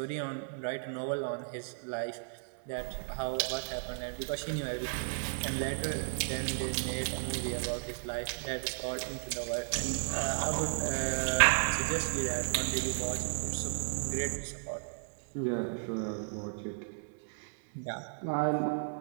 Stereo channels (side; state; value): left; silent; digital silence